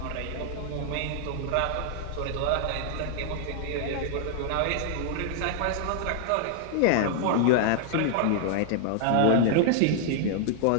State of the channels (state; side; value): different; both; correlation 0.00